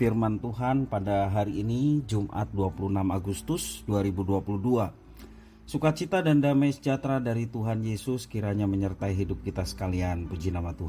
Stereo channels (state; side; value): identical; both; correlation 1.00